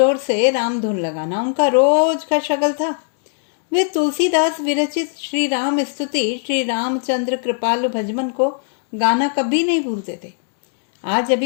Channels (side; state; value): right; silent; digital silence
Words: से रामधुन लगाना उनका रोज का शगल था। वे तुलसीदास विरचित श्री राम स्तुति, श्री रामचंद्र कृपालु भजमन को गाना कभी नहीं भूलते थे। आज